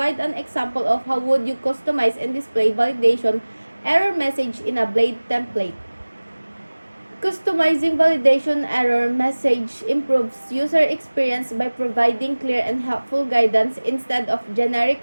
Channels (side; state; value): both; inverted; correlation -1.00